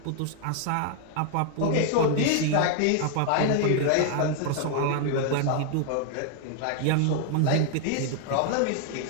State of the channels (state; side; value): different; both; correlation 0.00